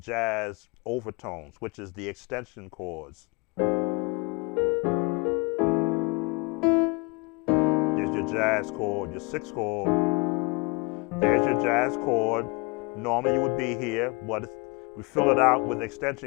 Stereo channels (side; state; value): right; quieter; 28.2 dB